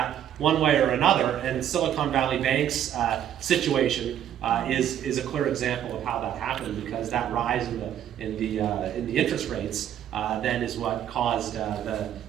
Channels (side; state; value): left; quieter; 10.5 dB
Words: one way or another. And Silicon Valley Bank's situation is a clear example of how that happened, because that rise in the interest rates then is what caused the